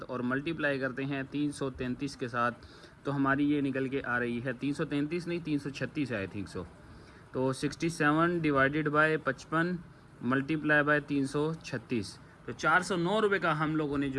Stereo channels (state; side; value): identical; both; correlation 1.00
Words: और मल्टीप्लाई करते हैं 333 के साथ, तो हमारी ये निकल के आ रही है 333 नहीं 336 है आई थिंक सो। तो 67 डिवाइडेड बाय 55 मल्टीप्लाई बाय 336, तो 409 रुपये का हम लोगों ने